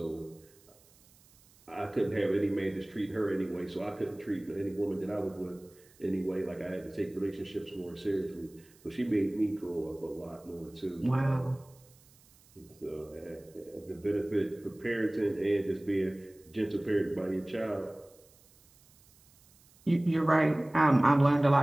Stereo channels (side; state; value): right; noise; hiss, 28 dB below the sound